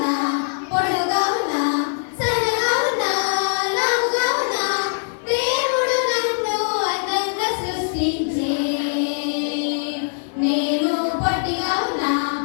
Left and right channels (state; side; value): silent; right; 60 dB below the other